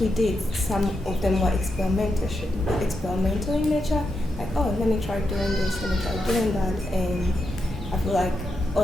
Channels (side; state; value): both; normal; correlation 0.85